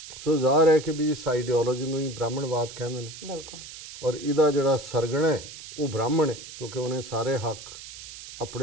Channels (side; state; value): right; noise; hiss, 14 dB below the sound